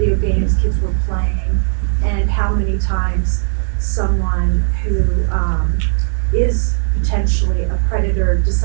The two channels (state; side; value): silent; left; digital silence